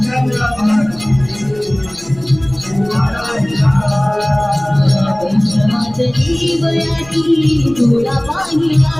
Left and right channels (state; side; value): noise; right; rumble, 22 dB below the sound